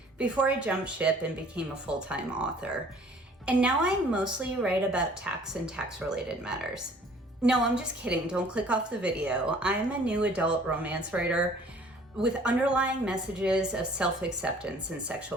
before I jumped ship and became a full-time author. And now I mostly write about tax and tax-related matters. No, I'm just kidding. Don't click off the video. I'm a new adult romance writer with underlying messages of self-acceptance and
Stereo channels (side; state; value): both; normal; correlation 0.54